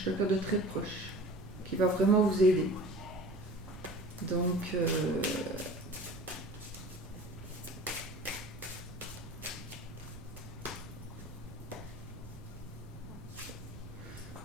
quelqu'un de très proche, qui va vraiment vous aider. Donc,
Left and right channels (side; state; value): right; noise; rumble, 14 dB below the sound